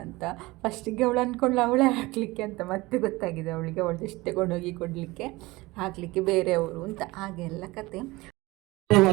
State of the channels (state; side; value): quieter; left; 21.2 dB